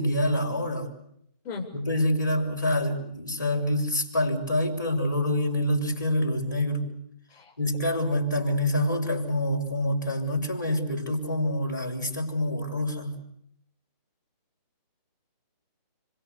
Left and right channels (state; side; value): inverted; both; correlation -0.70